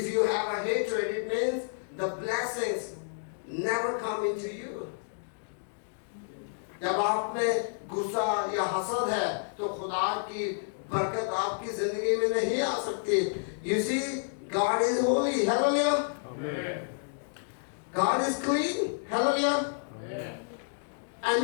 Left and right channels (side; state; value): right; silent; digital silence